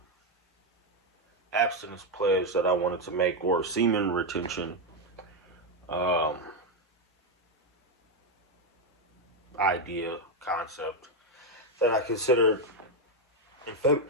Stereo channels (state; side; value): normal; both; correlation 0.05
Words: abstinence pledge that I wanted to make, or semen retention um, idea, concept that I considered in